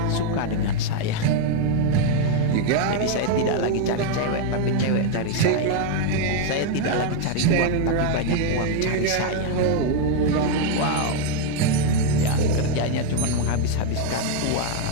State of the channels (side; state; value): both; different; correlation 0.00